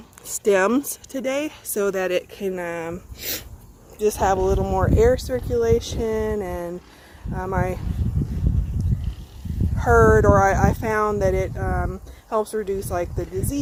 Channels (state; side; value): identical; both; correlation 1.00